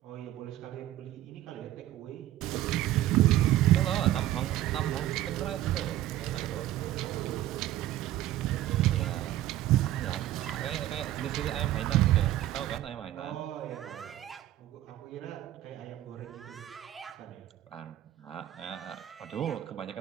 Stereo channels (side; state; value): left; quieter; 13.9 dB